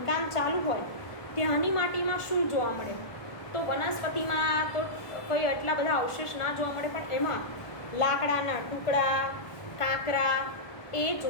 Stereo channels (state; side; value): late; right; 1.4 ms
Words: ચાલુ હોય ત્યાંની માટીમાં શું જોવા મળે? તો વનસ્પતિમાં તો કોઈ એટલા બધા અવશેષ ના જોવા મળે, પણ એમાં લાકડાના ટુકડા, કાંકરા એ